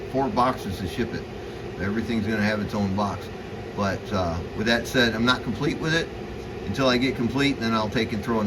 boxes to ship it. Everything's going to have its own box. But with that said, I'm not complete with it until I get complete, and then I'll take and throw a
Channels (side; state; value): both; identical; correlation 1.00